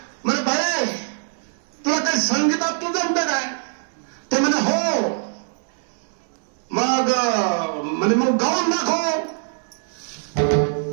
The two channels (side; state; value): left; silent; 61 dB below the other